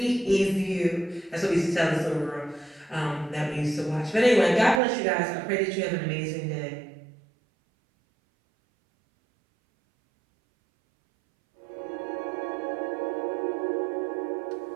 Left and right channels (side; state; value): left; drops out; at 4.8 s